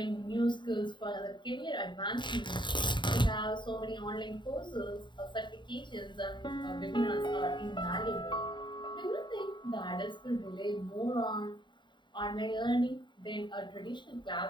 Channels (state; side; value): late; right; 0.23 ms